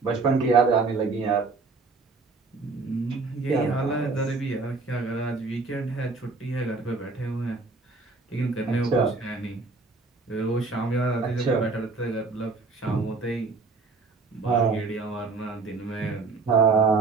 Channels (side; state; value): left; quieter; 4.0 dB